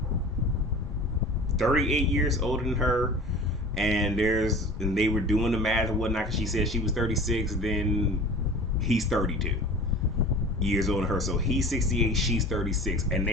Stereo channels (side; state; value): both; normal; correlation 0.39